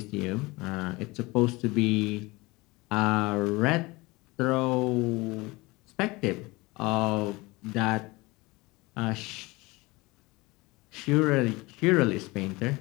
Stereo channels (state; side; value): quieter; right; 23.0 dB